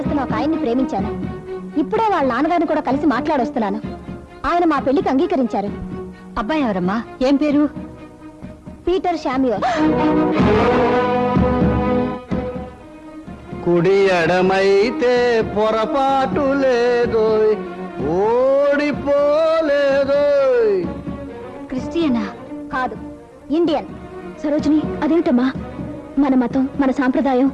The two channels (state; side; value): identical; both; correlation 1.00